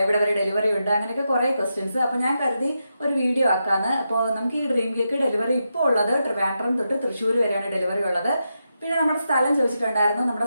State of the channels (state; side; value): inverted; both; correlation -0.86